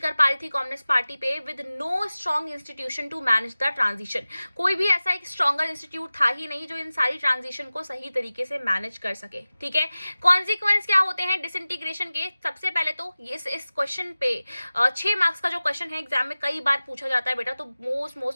पा रही थी कम्युनिस्ट पार्टी पे, with no strong institution to manage the transition. कोई भी ऐसा एक स्ट्रॉन्गर इंस्टीट्यूट था ही नहीं जो इन सारी ट्रांजिशन को सही तरीके से मैनेज कर सके। ठीक है, कॉन्सिक्वेंस क्या होते हैं डिसइंटीग्रेशन के? सबसे पहले तो इस क्वेश्चन पे 6 मार्क्स का जो क्वेश्चन है एग्जाम में कई बार पूछा जाता है बेटा, तो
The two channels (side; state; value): both; inverted; correlation -0.96